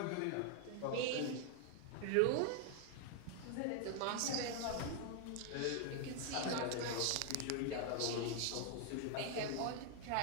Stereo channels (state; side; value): different; both; correlation 0.00